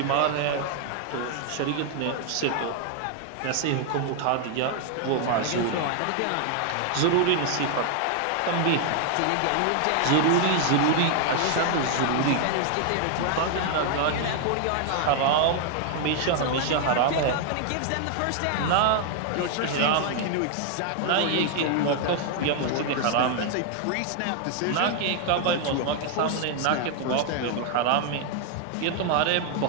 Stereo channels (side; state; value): both; different; correlation 0.00